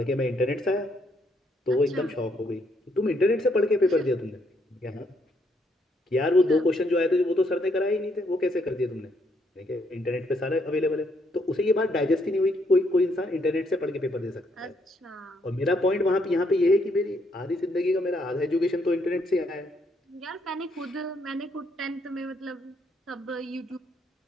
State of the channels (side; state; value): both; normal; correlation 0.73